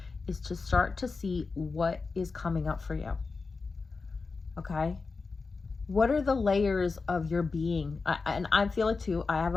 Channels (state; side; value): quieter; right; 4.3 dB